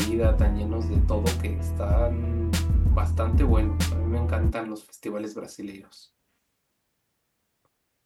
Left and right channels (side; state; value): both; identical; correlation 1.00